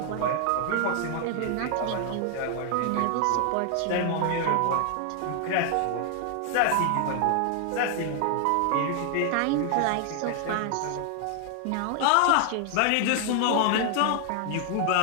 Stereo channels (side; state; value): both; different; correlation 0.00